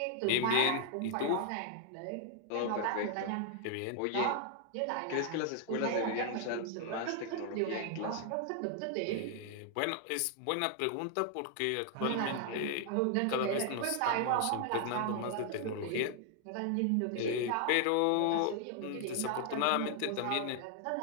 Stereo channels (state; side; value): different; both; correlation 0.00